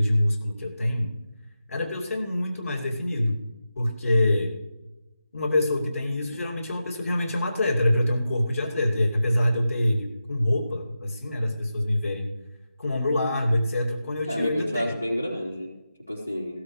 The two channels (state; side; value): inverted; both; correlation -0.91